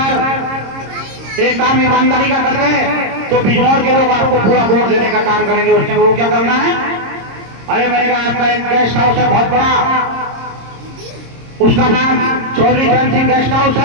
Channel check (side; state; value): left; late; 26 ms